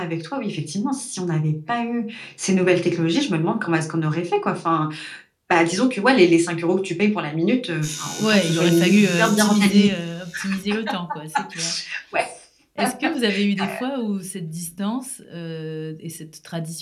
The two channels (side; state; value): both; identical; correlation 1.00